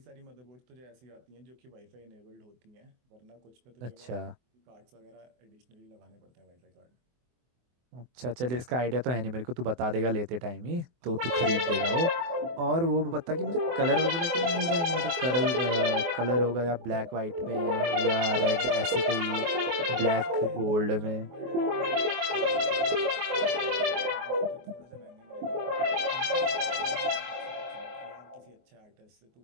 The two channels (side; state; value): left; late; 24 ms